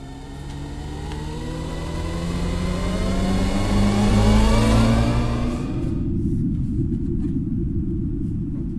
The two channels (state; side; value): identical; both; correlation 1.00